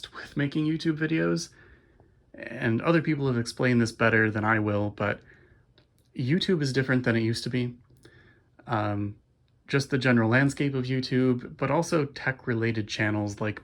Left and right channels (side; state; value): both; identical; correlation 1.00